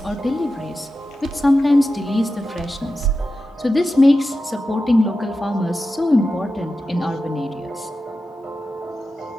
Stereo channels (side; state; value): both; normal; correlation 0.92